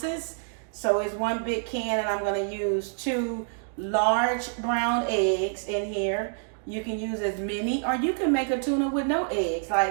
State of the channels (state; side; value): silent; left; digital silence